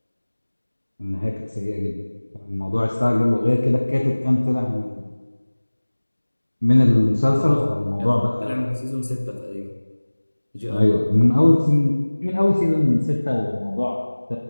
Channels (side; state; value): both; inverted; correlation -1.00